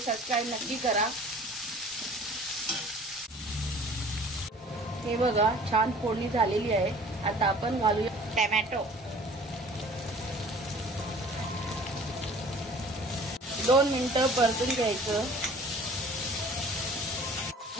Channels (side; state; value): both; normal; correlation 0.48